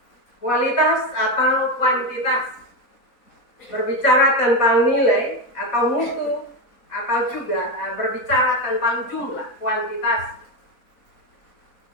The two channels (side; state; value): right; late; 4.0 ms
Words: kualitas atau kuantitas. Berbicara tentang nilai atau mutu, atau juga berbicara tentang jumlah, kuantitas.